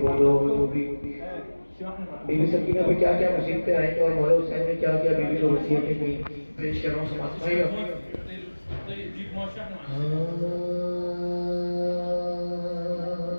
हो दो हो, जो भी। बीबी सकीना पे क्या क्या मुसीबतें आई और मौला हुसैन ने क्या क्या बीबी को वसीयतें की, पेश कर रहा हूँ। समाज भाई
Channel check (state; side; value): inverted; both; correlation -1.00